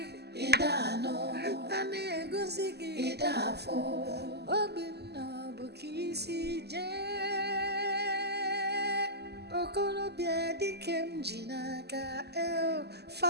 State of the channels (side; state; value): left; late; 0.48 ms